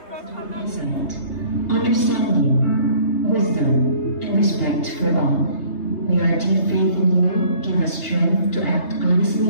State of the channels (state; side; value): late; right; 3.3 ms